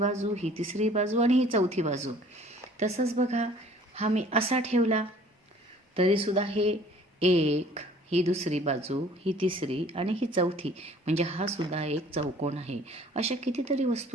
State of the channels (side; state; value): both; normal; correlation 0.53